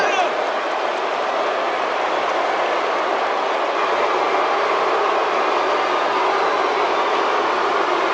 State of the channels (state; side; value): identical; both; correlation 1.00